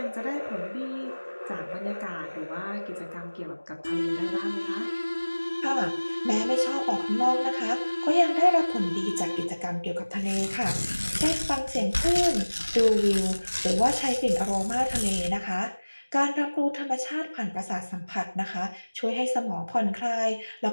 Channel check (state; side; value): inverted; both; correlation -1.00